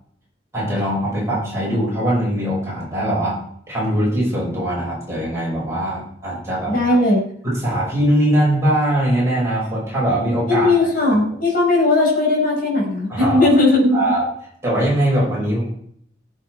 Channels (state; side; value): normal; both; correlation 0.51